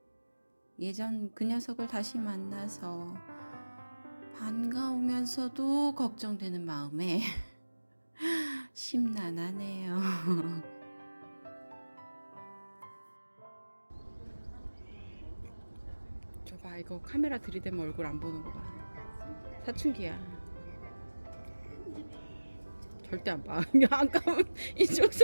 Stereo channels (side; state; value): both; inverted; correlation -1.00